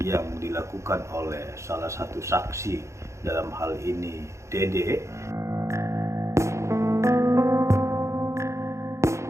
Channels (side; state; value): left; late; 0.14 ms